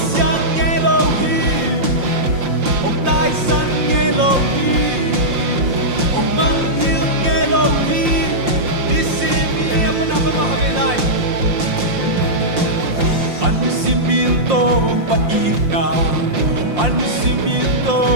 Elohim, Tài sân Elohim, ông mang yêu Elohim, đi xin đi apa nama mahamelai. Anisiminto paina,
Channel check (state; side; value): late; left; 5.7 ms